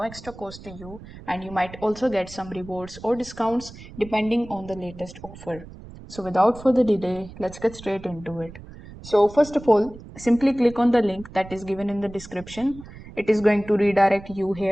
extra cost to you, and you might also get some rewards or discounts depending on the latest offer. So, without further delay, let's get straight into it. So, first of all, simply click on the link that is given in the description. It is going to redirect you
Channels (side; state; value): right; noise; rumble, 16 dB below the sound